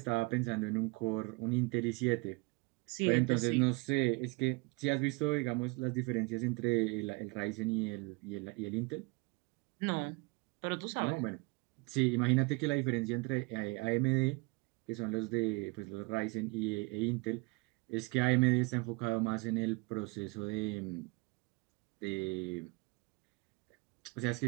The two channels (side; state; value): left; quieter; 27.9 dB